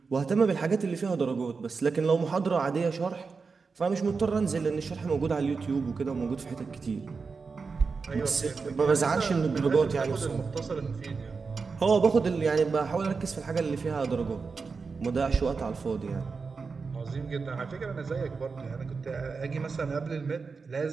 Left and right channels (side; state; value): left; quieter; 4.8 dB